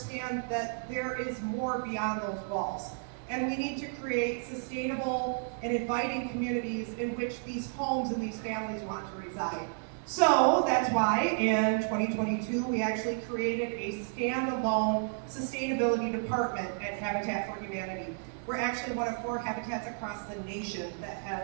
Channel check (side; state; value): left; silent; 56 dB below the other